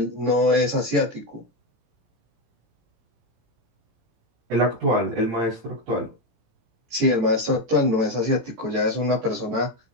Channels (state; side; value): late; left; 18 ms